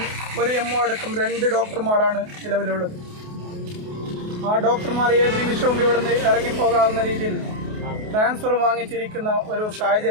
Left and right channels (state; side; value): late; left; 28 ms